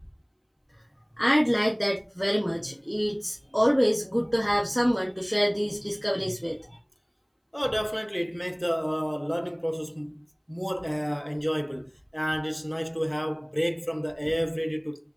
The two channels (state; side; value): identical; both; correlation 1.00